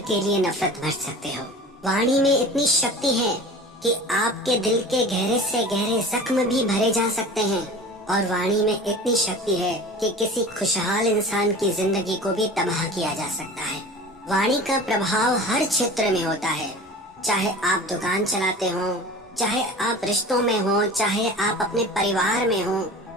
के लिए नफरत भर सकते हो। वाणी में इतनी शक्ति है कि आपके दिल के गहरे से गहरे जख्म भी भरे जा सकते हैं और वाणी में इतनी शक्ति है कि किसी खुशहाल इंसान की जिंदगी को भी तबाह किया जा सकता है। वाणी का प्रभाव हर क्षेत्र में होता है, चाहे आप दुकान चलाते हो, चाहे आप रिश्तों में हो, चाहे आप अपने परिवार में हो,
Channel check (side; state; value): both; normal; correlation 0.38